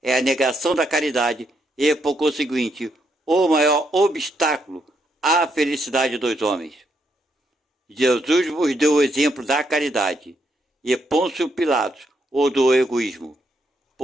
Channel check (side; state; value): both; normal; correlation 0.77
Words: É a negação da caridade e, por conseguinte, o maior obstáculo à felicidade dos homens. Jesus vos deu o exemplo da caridade e Pôncio Pilatos o do egoísmo,